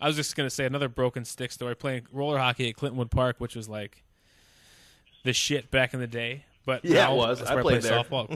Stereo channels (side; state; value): both; identical; correlation 1.00